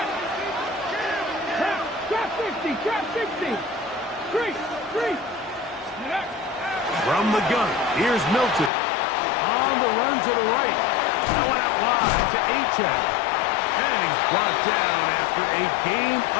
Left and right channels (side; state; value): right; drops out; at 8.7 s